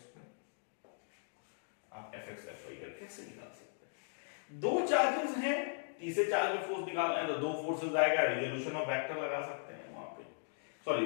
आप Fx Fy कैसे निकाल सकते हैं? दो चार्जेस हैं, तीसरे चार्ज में फोर्स निकालना है तो दो फोर्सेस आएगा, रिजोल्यूशन ऑफ वेक्टर लगा सकते हैं वहां पे,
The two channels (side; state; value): right; silent; digital silence